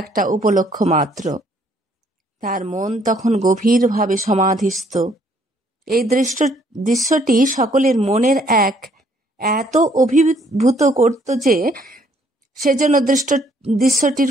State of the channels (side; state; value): both; normal; correlation 0.65